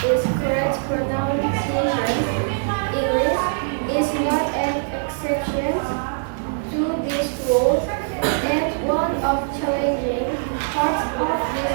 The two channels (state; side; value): silent; left; digital silence